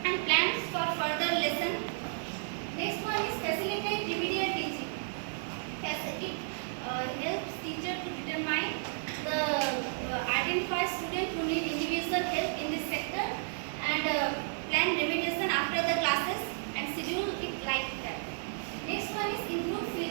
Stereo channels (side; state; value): left; silent; digital silence